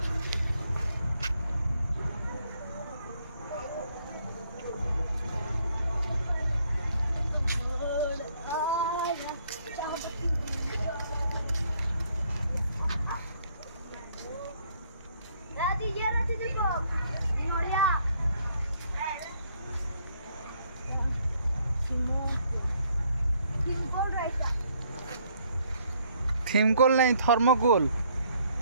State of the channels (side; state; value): both; inverted; correlation -0.67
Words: थीमकोल नहीं थर्मोकोल